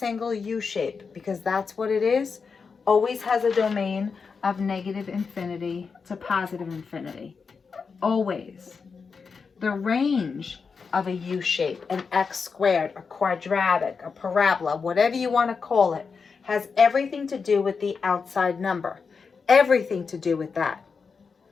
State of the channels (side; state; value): right; quieter; 5.3 dB